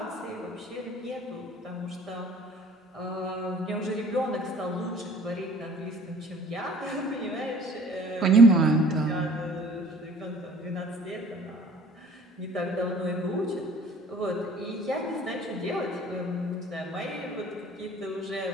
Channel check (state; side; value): normal; both; correlation 0.51